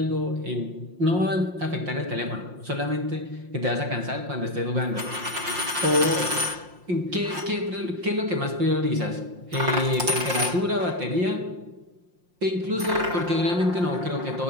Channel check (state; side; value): late; left; 5.7 ms